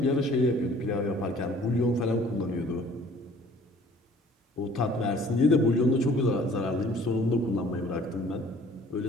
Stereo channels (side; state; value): both; normal; correlation 0.53